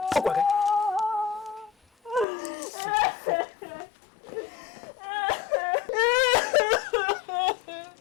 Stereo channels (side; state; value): right; drops out; at 2.2 s